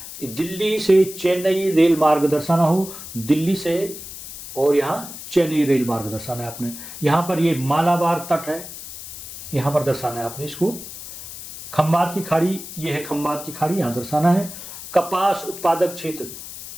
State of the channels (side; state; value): left; noise; hiss, 12 dB below the sound